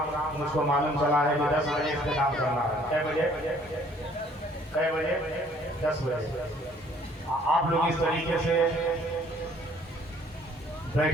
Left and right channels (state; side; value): normal; both; correlation 0.59